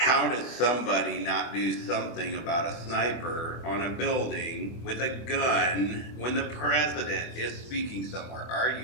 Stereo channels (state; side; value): late; right; 24 ms